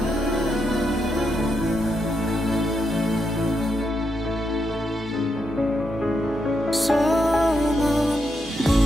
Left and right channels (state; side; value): normal; both; correlation 0.82